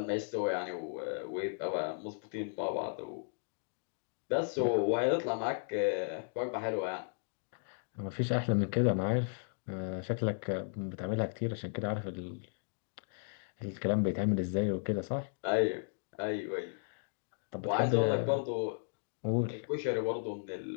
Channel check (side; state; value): right; silent; digital silence